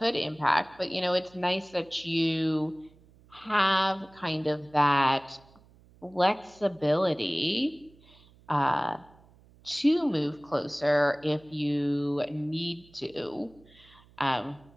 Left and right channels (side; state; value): right; noise; hum, 27 dB below the sound